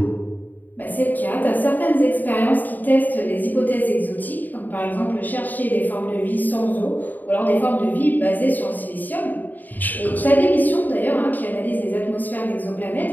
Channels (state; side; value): late; right; 0.086 ms